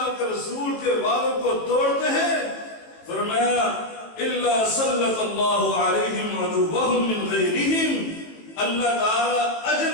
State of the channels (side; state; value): right; late; 18 ms